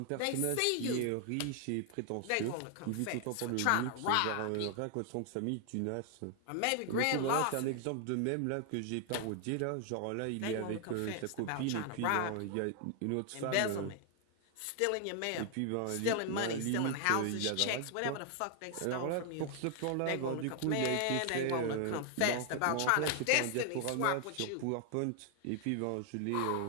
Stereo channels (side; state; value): both; different; correlation 0.00